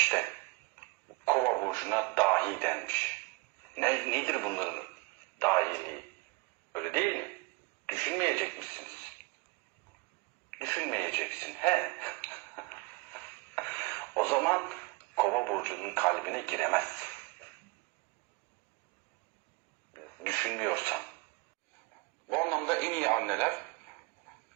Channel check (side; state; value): left; quieter; 26.4 dB